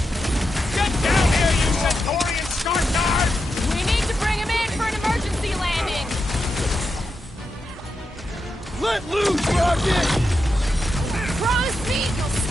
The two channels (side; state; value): both; normal; correlation 0.87